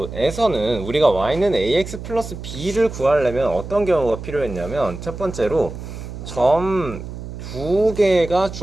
우리가 y는 ax 플러스 b를 구하려면 어떤 경우가 필요했냐면 첫 번째로 점 두 개가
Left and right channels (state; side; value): noise; right; hum, 10 dB below the sound